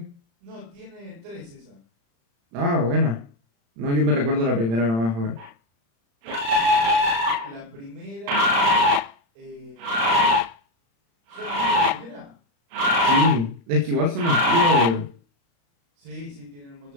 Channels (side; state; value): left; late; 35 ms